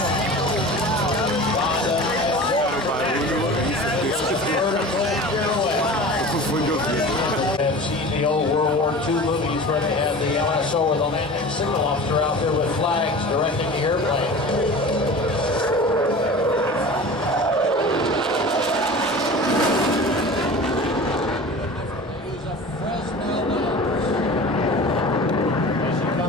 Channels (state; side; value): normal; both; correlation 0.36